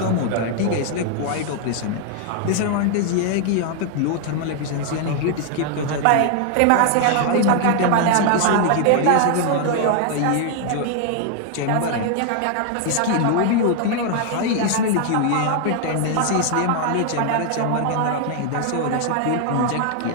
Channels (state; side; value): different; both; correlation 0.00